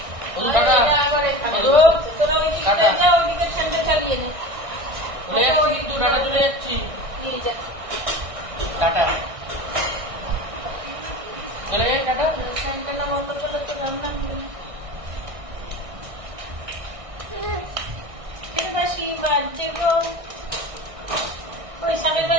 ওই টাটা তোরা ওইদিকে যা ওইদিকে ঠান্ডা চালিয়ে নে ওই তুই টাটা চলে যাচ্ছি নিয়ে যা টাটা চলে টাটা ঠান্ডা বন্ধ করলে তো রান্না হবে না फिर बाशी बाजे को कोई समय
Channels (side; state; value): left; late; 1.6 ms